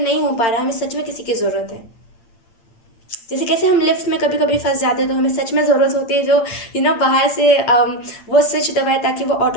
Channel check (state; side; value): late; right; 8.8 ms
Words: हो पा रहा है, हमें सच में किसी की ज़रूरत है। जैसे कैसे हम लिफ्ट में कभी कभी फंस जाते हैं, तो हमें सच में ज़रूरत होती है जो बाहर से वो स्विच दबाए ताकि वो